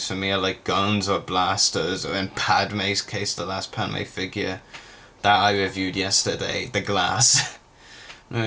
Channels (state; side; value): identical; both; correlation 1.00